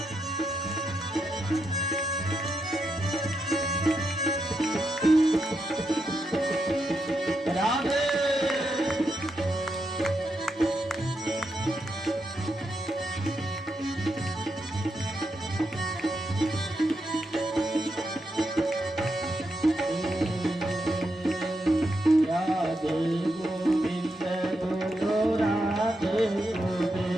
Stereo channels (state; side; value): normal; both; correlation 0.84